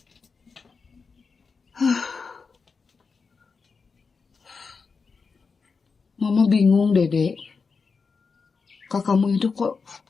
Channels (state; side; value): quieter; right; 4.9 dB